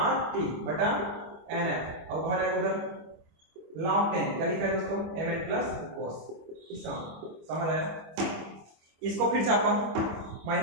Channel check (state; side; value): late; left; 25 ms